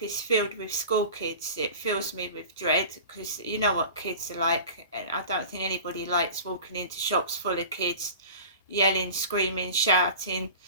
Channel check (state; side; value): inverted; both; correlation -0.37